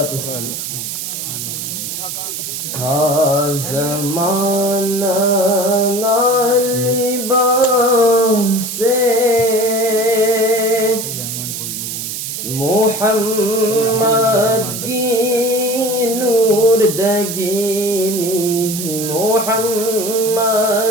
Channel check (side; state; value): right; noise; hiss, 5 dB below the sound